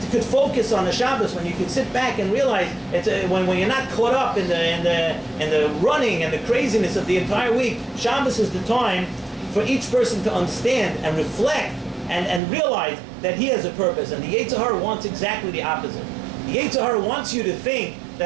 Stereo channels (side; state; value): left; drops out; at 12.4 s